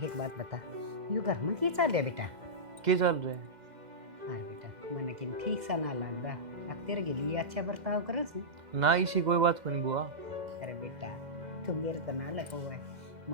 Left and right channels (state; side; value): late; left; 2.0 ms